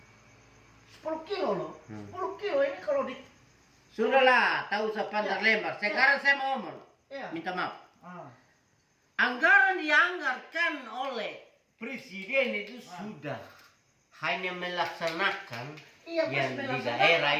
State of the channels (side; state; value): both; identical; correlation 1.00